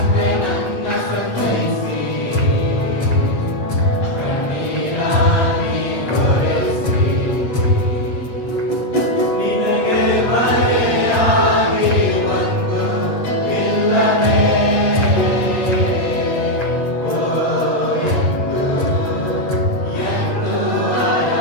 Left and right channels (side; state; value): right; late; 8.2 ms